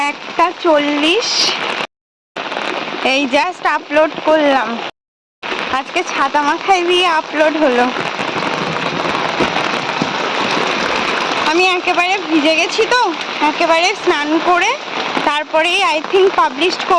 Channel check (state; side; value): identical; both; correlation 1.00